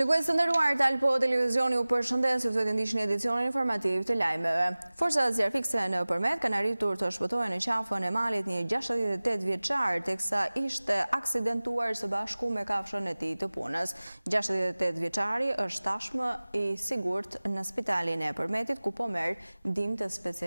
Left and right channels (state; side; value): inverted; both; correlation -0.99